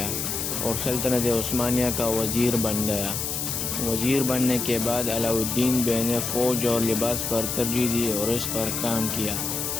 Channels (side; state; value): left; noise; hiss, 2 dB below the sound